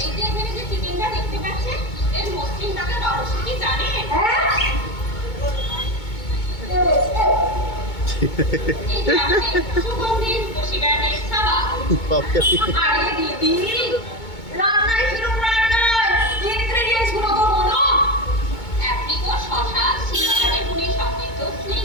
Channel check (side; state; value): right; late; 2.2 ms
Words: এই যে এখানে যে চিকেনটা দেখতে পাচ্ছেন, এর মসৃণ টাকার রহস্য কি জানেন? এই যে আমাদের সুগন্ধি রূপসী ব্র্যান্ডের সাবান। আরে দিদি, রান্নায় কিরম রান্নায় ইনগ্রেডিয়েন্টস গুলো তো বলো। অ্যাপ্রিকট, শসা, সিরা, বেগুনি সমৃদ্ধ